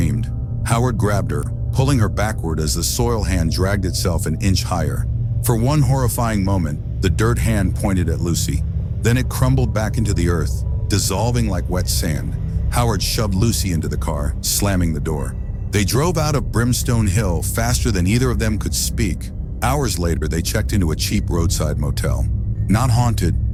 Howard grabbed her, pulling her backward as the soil hand dragged itself an inch higher. For one horrifying moment, the dirt hand pointed at Lucy. Then it crumbled back into the earth, dissolving like wet sand. Howard shoved Lucy into the car, slamming the door. They drove out of Brimstone Hill faster than either of them could speak. Hours later, they checked into a cheap roadside motel. Not haunted,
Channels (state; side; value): identical; both; correlation 1.00